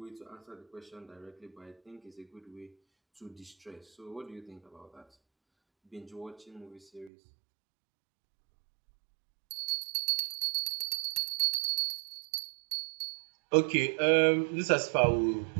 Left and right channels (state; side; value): drops out; left; at 7.1 s